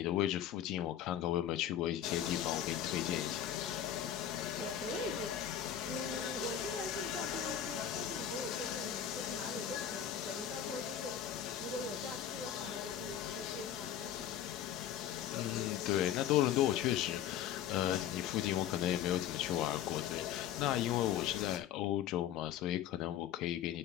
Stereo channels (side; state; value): right; quieter; 10.3 dB